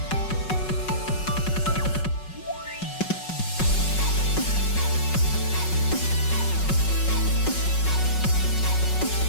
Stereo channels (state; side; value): late; right; 5.4 ms